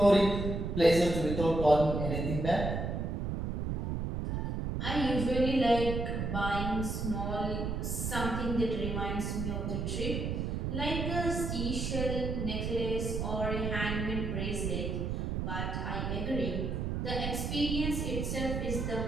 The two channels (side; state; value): right; noise; rumble, 2 dB below the sound